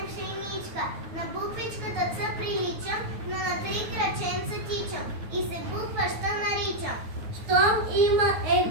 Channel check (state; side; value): late; left; 9.3 ms